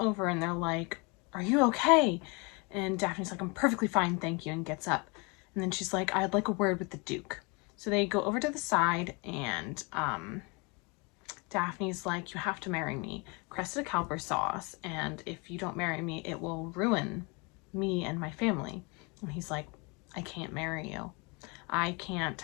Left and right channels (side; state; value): right; quieter; 30.3 dB